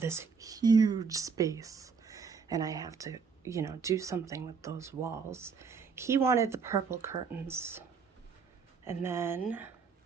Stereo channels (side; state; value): left; quieter; 5.6 dB